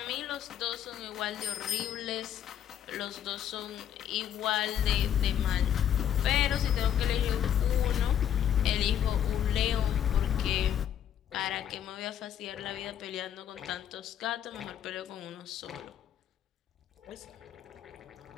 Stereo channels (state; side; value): quieter; right; 9.8 dB